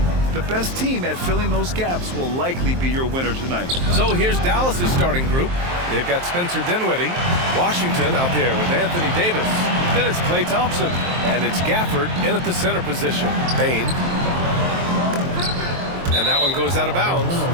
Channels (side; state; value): left; late; 23 ms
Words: The best team at filling those gaps will likely be your winner tonight. So here's Dallas's starting group. They've got Spencer Dinwiddie, Washington out there with Anthony Davis. Then it's Klay Thompson, and it's Gafford in at the center position. Bane. And that one goes out of bounds.